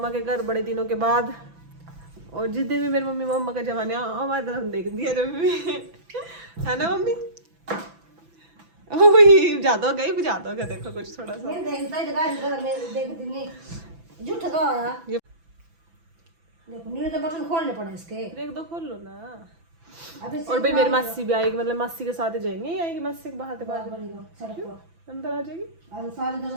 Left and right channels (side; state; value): left; late; 6.0 ms